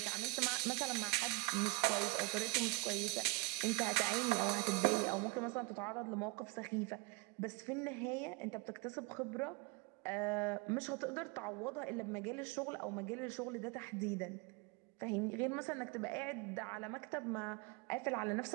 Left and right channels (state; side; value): quieter; left; 25.3 dB